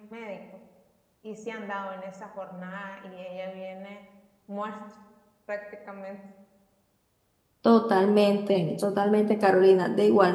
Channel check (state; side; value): identical; both; correlation 1.00